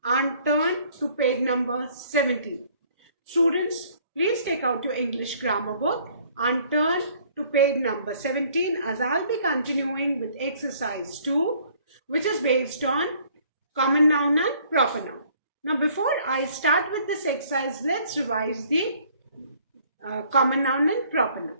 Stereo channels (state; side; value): inverted; both; correlation -0.59